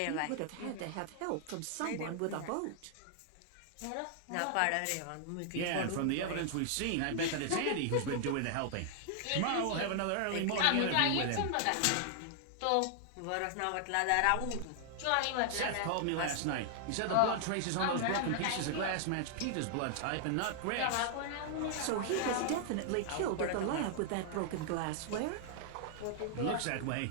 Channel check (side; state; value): both; different; correlation 0.00